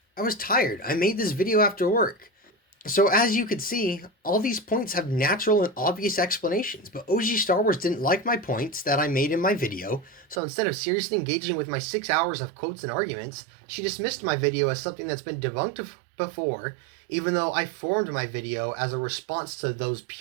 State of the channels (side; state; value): left; drops out; at 10.4 s